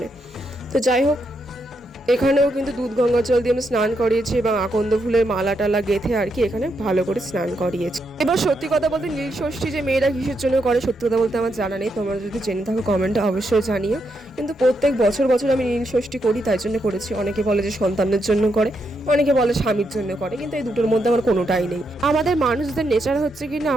তো যাই হোক, এখানেও কিন্তু দুধ গঙ্গা জল দিয়ে আমি স্নান করিয়েছি এবং আকন্দ ফুলের মালা টালা গেঁথে আর কি এখানে ভালো করে স্নান করিয়েছি। এবার সত্যি কথা বলতে নীল ষষ্ঠী যে মেয়েরা কিসের জন্য করে সত্যি কথা বলতে আমার জানা নেই, তোমরা যদি জেনে থাকো কমেন্টে অবশ্যই জানিও। কিন্তু প্রত্যেক বছর আমি নীল ষষ্ঠী করি, তাই জন্য করেছি। অনেকে বলে যে সন্তানের জন্য করে, অনেকে বলে স্বামীর জন্য করে, কিন্তু এই দুটোর মধ্যে আমার কোনোটাই নেই। আমাদের মানুষদের নেচার হচ্ছে কি না,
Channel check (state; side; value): normal; both; correlation 0.81